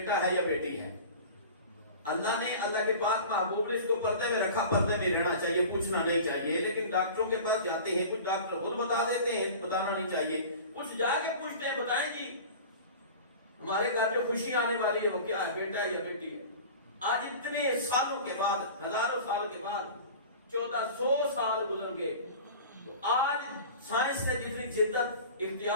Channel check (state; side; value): inverted; both; correlation -0.38